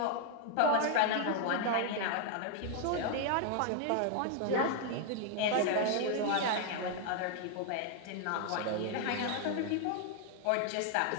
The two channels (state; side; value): different; both; correlation 0.00